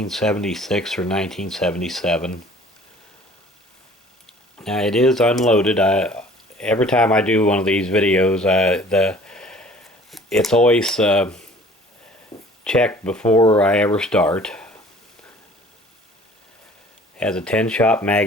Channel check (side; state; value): both; normal; correlation 0.50